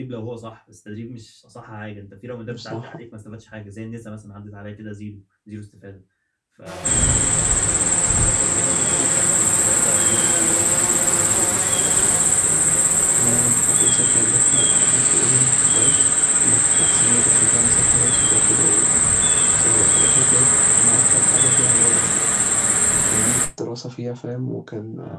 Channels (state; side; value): identical; both; correlation 1.00